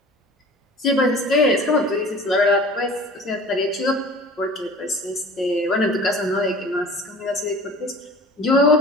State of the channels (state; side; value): normal; both; correlation 0.43